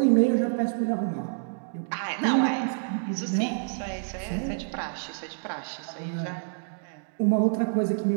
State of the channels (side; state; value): left; silent; digital silence